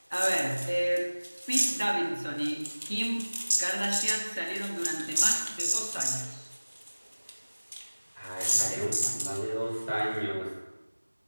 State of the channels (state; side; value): inverted; both; correlation -1.00